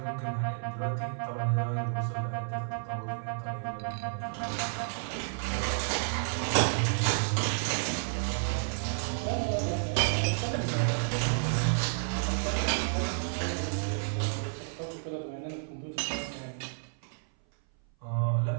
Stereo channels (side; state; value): left; silent; 57 dB below the other